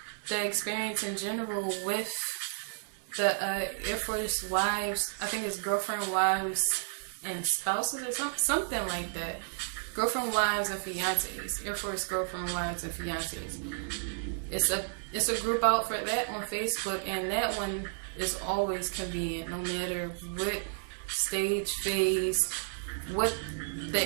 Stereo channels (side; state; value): left; silent; 56 dB below the other